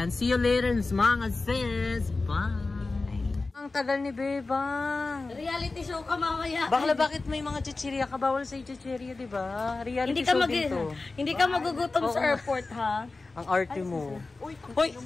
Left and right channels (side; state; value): right; quieter; 3.6 dB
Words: See you later, mga sis. Bye! Ang tagal ni Bebang. Reality show ka mamaya. Bakla, bakit may mga chichirya ka? Bawal sa chichirya, di ba? Reality show din to. Hindi ka magugutom sa airport, ha? Ang arte mo. Hoy!